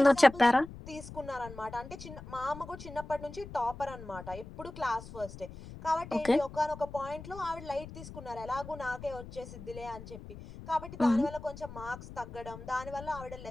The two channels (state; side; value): noise; left; rumble, 13 dB below the sound